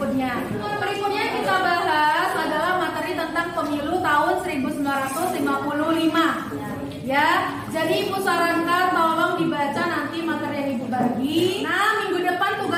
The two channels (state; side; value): identical; both; correlation 1.00